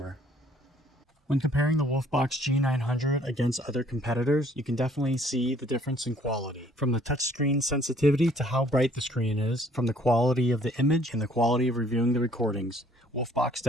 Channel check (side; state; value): both; normal; correlation 0.60